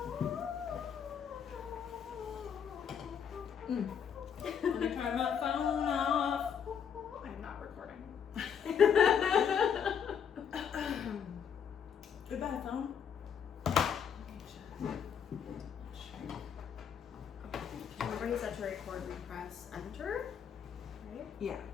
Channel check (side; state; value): right; quieter; 7.7 dB